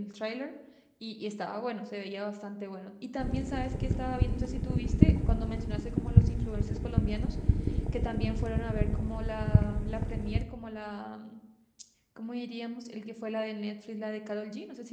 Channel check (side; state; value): both; identical; correlation 1.00